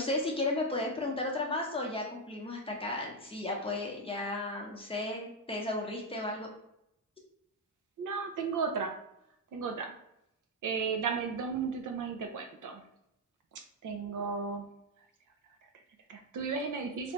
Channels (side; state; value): both; normal; correlation 0.04